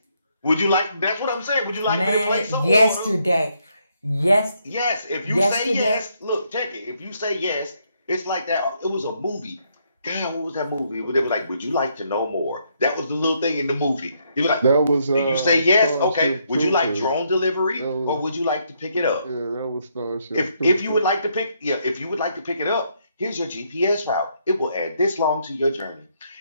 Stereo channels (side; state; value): both; inverted; correlation -0.74